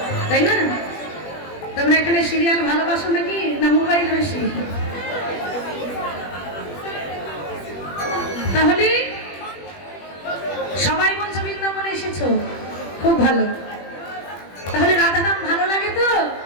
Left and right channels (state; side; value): late; right; 21 ms